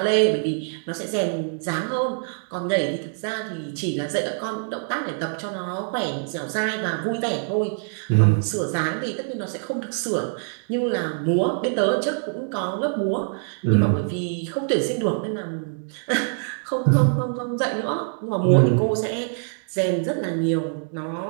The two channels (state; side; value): silent; left; 62 dB below the other